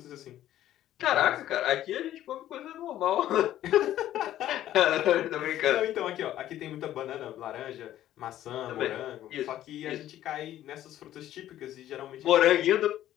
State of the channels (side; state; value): right; quieter; 12.8 dB